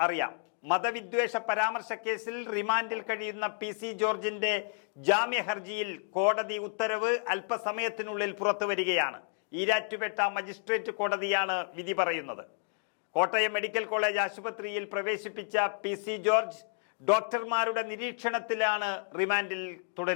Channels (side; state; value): right; silent; 57 dB below the other